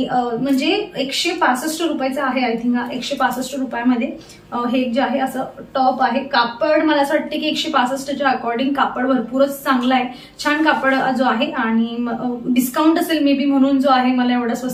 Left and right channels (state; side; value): identical; both; correlation 1.00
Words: म्हणजे 165 रुपयाचा आहे. आय थिंक 165 रुपयामध्ये हे जे आहे असं टॉप आहे. कापड मला असं वाटतं की 165च्या अकॉर्डिंग कापड भरपूरच चांगला आहे, छान कापड जो आहे. आणि डिस्काउंट असेल मे बी म्हणून जो आहे मला एवढा